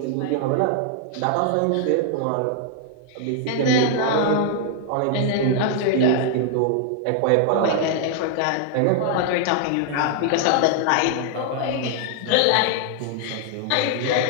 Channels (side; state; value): both; different; correlation 0.00